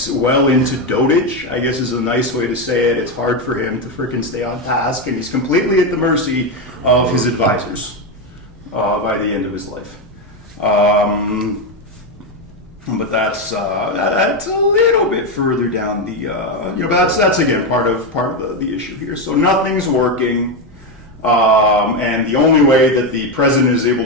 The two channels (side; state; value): left; noise; rumble, 25 dB below the sound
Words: well into dotage, I guess is a nice way to say it. It's hard for him to frickin' stay on task, and he's completely at the mercy of his advisors by the end of his life. But that's a little bit further down the, that's again part of the issue here. So nothing's working. And the only way that the president is able